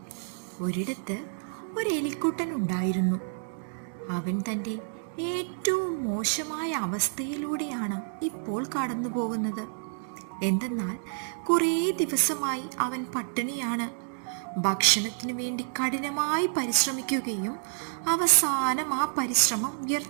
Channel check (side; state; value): left; silent; digital silence